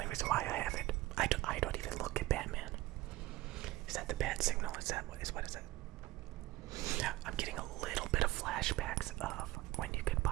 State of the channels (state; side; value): quieter; left; 17.7 dB